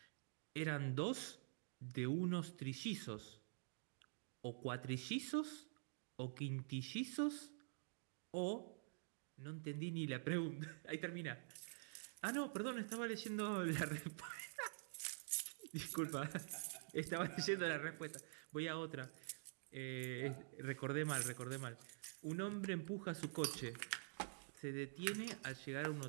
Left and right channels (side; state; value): left; silent; digital silence